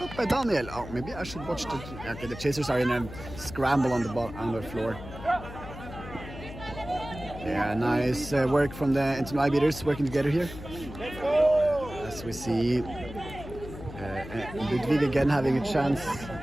by Daniel. Oh, maybe I should watch the... Okay, the chasers are in a scramble on the floor. Yeah, nice work from the Ntnui beaters working together here. As we see Ludwig again having a chance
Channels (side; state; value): left; noise; hum, 12 dB below the sound